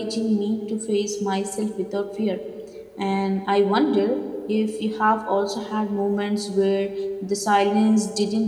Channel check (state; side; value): identical; both; correlation 1.00